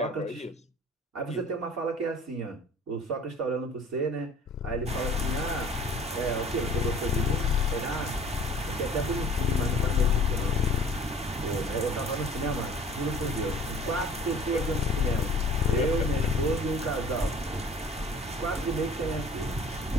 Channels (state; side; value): normal; both; correlation 0.49